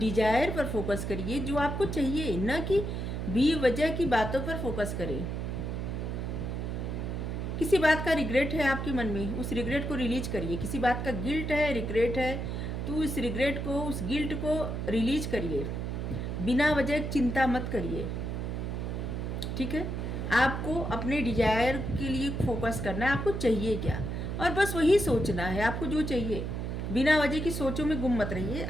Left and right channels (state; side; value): noise; right; hum, 3 dB below the sound